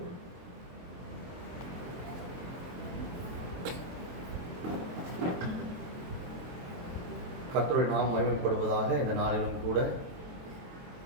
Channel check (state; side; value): late; left; 23 ms